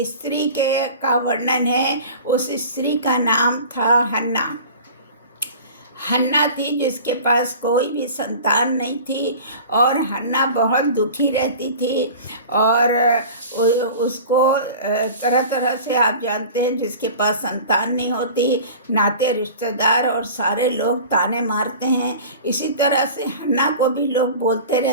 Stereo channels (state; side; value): inverted; both; correlation -0.39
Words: स्त्री का वर्णन है। उस स्त्री का नाम था हन्ना। हन्ना थी जिसके पास कोई भी संतान नहीं थी, और हन्ना बहुत दुखी रहती थी, और उसको तरह तरह से, आप जानते हैं, जिसके पास संतान नहीं होती, नाते रिश्तेदार और सारे लोग ताने मारते हैं। इसी तरह से हन्ना को भी लोग बोलते